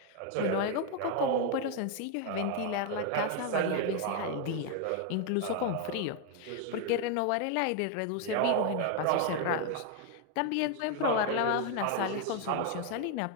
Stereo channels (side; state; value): both; different; correlation 0.01